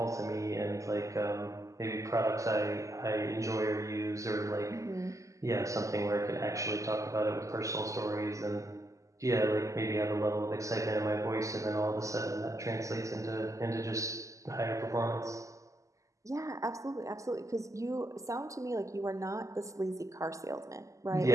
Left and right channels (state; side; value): late; left; 0.16 ms